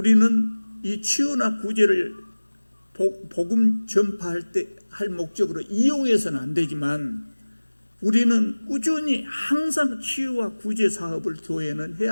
이 치유나 구제를 복음 전파할 때 할 목적으로 이용해서는 안 되지만, 우리는 꾸준히 항상 치유와 구제 사업을 교회는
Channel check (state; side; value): inverted; both; correlation -1.00